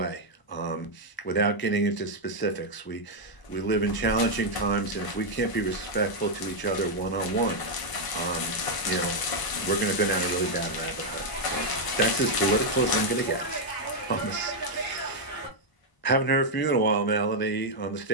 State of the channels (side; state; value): right; late; 1.0 ms